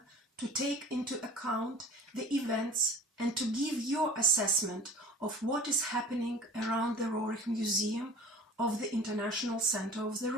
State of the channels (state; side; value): normal; both; correlation 0.41